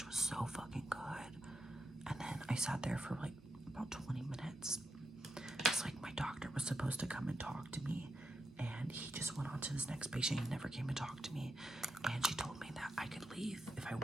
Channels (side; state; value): both; normal; correlation 0.85